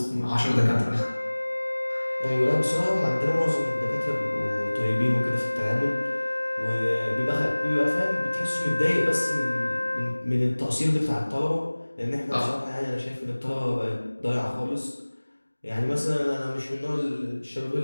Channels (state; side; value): inverted; both; correlation -1.00